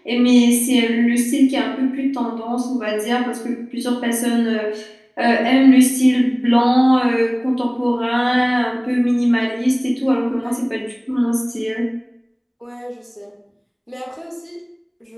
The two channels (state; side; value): identical; both; correlation 1.00